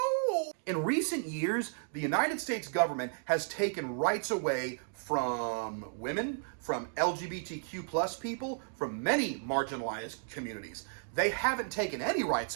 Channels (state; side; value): silent; left; digital silence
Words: no. In recent years, the United States government has taken rights away from women, from LGBTQ plus people, from many marginalized communities. They haven't taken any rights